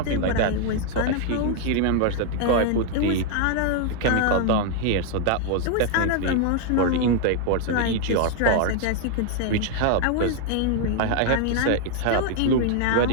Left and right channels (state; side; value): different; both; correlation 0.00